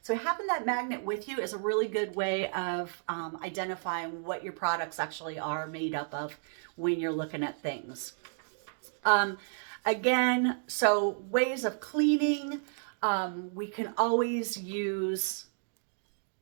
So having that magnet with you is a really good way of identifying what your products actually are made up of when you're looking at things. Again, so ways of cleaning, we can always use,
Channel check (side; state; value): left; silent; digital silence